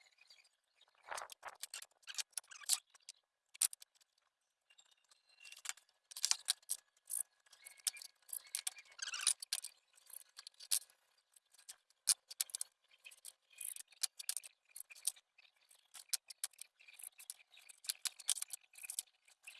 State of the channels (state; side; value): identical; both; correlation 1.00